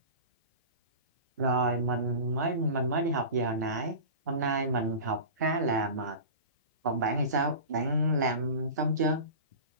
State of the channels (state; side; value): inverted; both; correlation -0.33